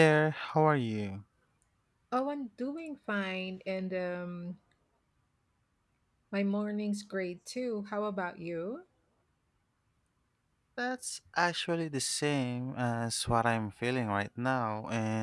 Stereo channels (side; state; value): both; identical; correlation 1.00